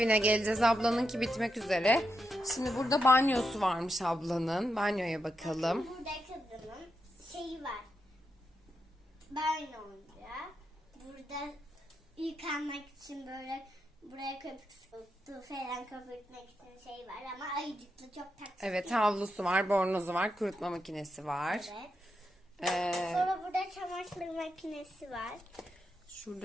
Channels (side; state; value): both; normal; correlation 0.84